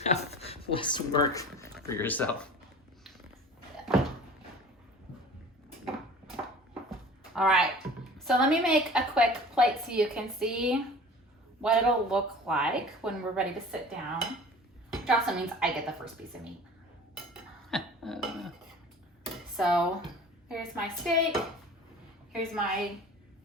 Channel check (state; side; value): normal; both; correlation 0.42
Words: have less work for yourself. All right, so let me make a quick plate so you can see what it'll look like when we're ready to sit down. Which also means I get the first piece of meat. So here's my steak, here's my